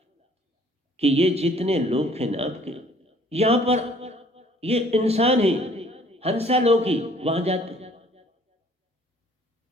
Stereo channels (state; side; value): normal; both; correlation 0.57